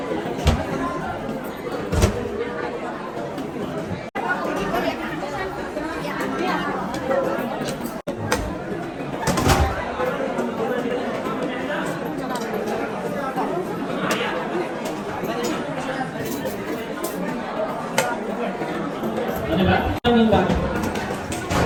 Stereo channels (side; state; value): both; identical; correlation 1.00